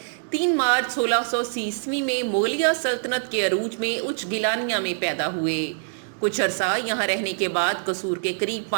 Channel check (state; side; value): silent; left; 62 dB below the other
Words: 3 مارچ 1630 میں مغلیہ سلطنت کے عروج میں اچ گیلانیہ میں پیدا ہوئے۔ کچھ عرصہ یہاں رہنے کے بعد قصور کے قریب